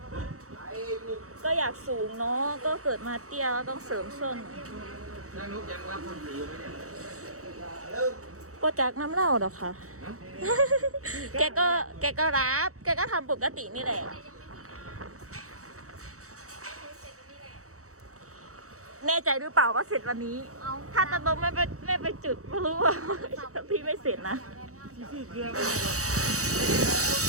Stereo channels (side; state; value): left; late; 0.65 ms